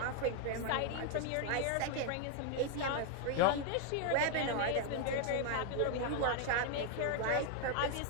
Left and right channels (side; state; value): both; different; correlation 0.00